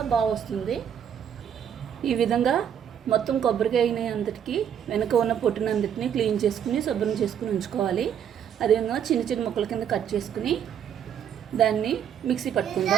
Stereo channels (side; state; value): left; quieter; 8.9 dB